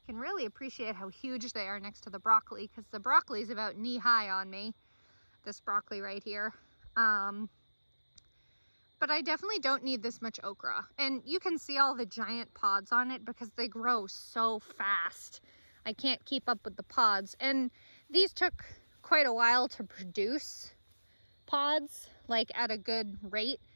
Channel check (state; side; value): inverted; both; correlation -1.00